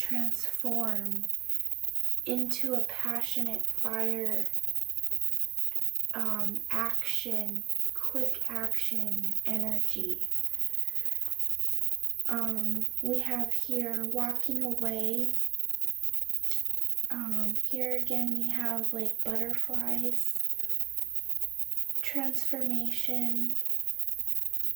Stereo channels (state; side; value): quieter; left; 16.5 dB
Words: into a passionate fire action, quick action energy. We have here walking away. Here again we have like butterflies, transformation,